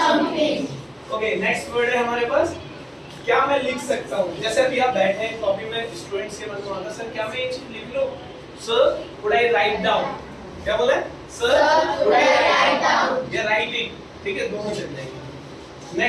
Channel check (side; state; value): both; identical; correlation 1.00